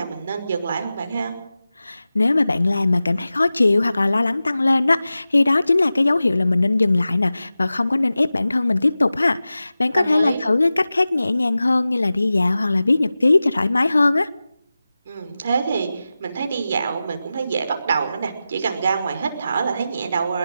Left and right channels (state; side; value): inverted; both; correlation -0.94